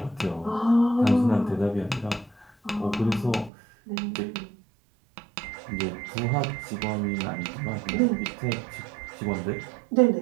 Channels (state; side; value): drops out; left; at 3.5 s